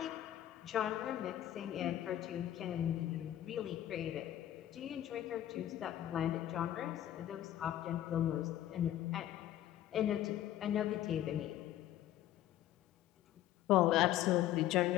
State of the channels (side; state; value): right; quieter; 12.6 dB